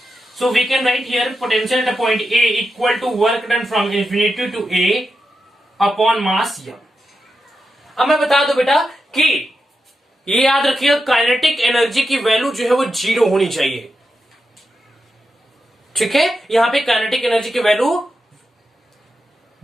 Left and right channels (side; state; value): both; normal; correlation 0.88